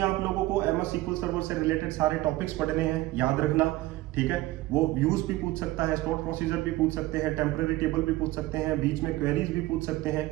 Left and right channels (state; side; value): quieter; left; 17.8 dB